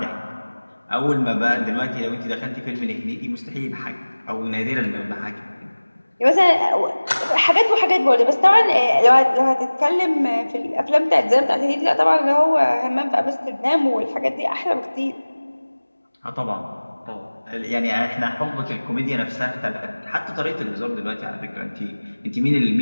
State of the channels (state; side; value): inverted; both; correlation -1.00